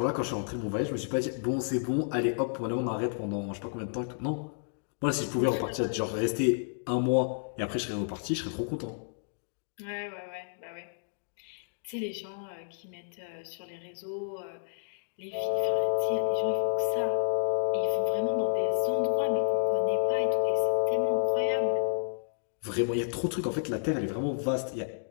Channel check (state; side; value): silent; right; digital silence